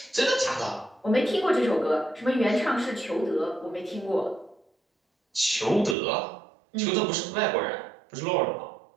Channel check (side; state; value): left; drops out; at 6.0 s